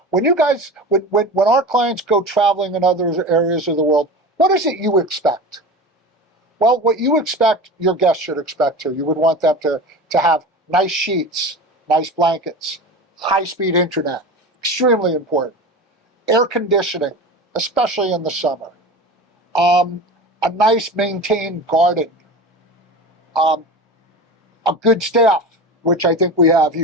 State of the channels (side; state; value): both; normal; correlation 0.30